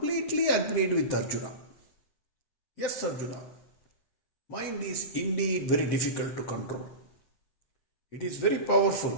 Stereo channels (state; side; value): late; right; 7.7 ms